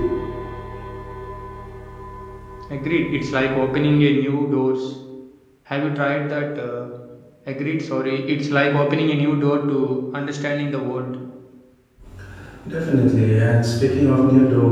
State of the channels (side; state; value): both; identical; correlation 1.00